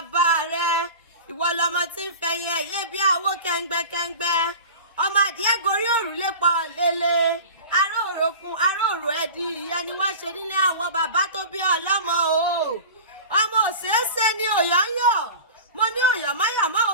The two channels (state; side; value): inverted; both; correlation -0.35